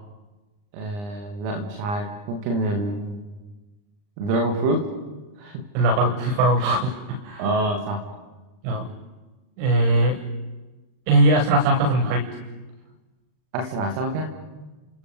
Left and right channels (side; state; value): left; late; 39 ms